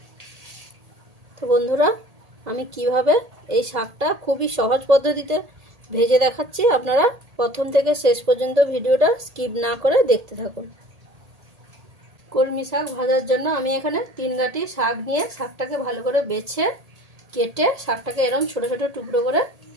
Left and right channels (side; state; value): left; late; 1.8 ms